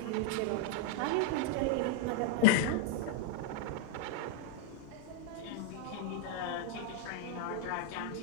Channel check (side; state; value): both; different; correlation 0.00